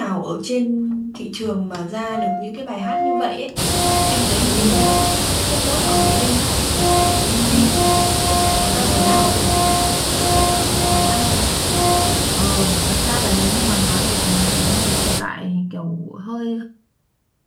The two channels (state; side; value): identical; both; correlation 1.00